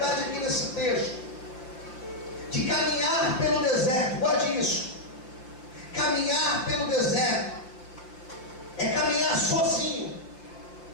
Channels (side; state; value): right; late; 5.8 ms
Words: aqui nesse texto, de caminhar pelo deserto. Guarde isso. Caminhar pelo deserto é caminhar sozinho,